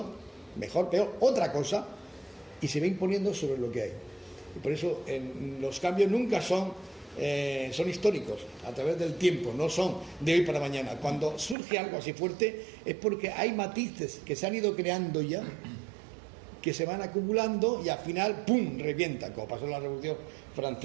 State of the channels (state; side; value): drops out; left; at 11.6 s